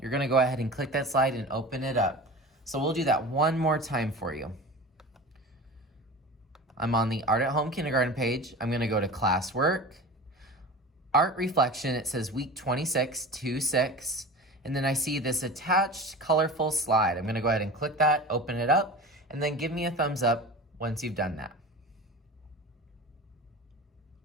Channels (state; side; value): normal; both; correlation 0.34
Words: gonna go ahead and click that slide and open it up. So we'll do that one more time for you. I'm on the Art at Home Kindergarten page. I'm gonna go to Classwork, Art Reflection, it says week 26, 2-6, and then I see this attached colorful slide. I'm gonna go ahead and click that, open it up, and then give me a thumbs up once you've done that.